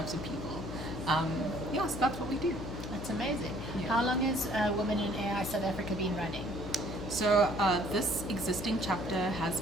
of people. So that's what we do. That's amazing. Yeah. How long has Women in AI South Africa been running? So this existing chapter has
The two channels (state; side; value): noise; left; hum, 8 dB below the sound